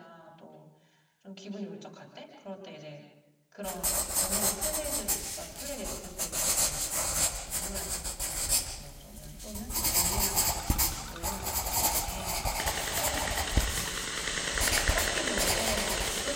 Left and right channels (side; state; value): both; identical; correlation 1.00